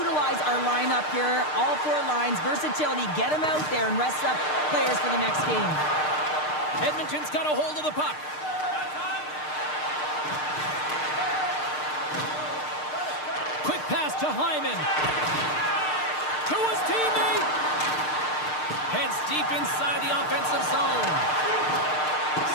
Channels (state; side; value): late; right; 6.6 ms